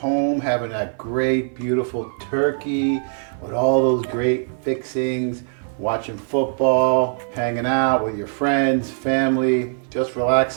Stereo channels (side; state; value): left; silent; 59 dB below the other